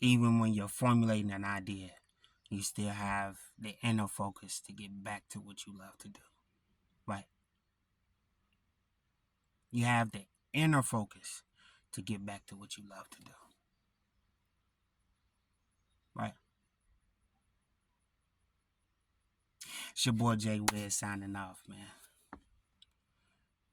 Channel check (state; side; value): identical; both; correlation 1.00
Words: when you're formulating an idea, you still have the inner focus to get back to what you love to do. Right? You have the inner focus to get back to what you love to do. Right? It's your boy Jay Wiz signing off, man.